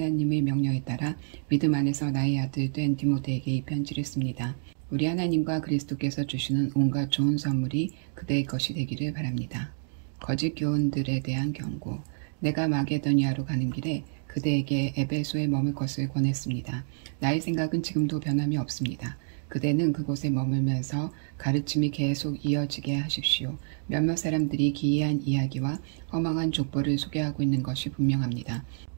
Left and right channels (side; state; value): left; silent; 59 dB below the other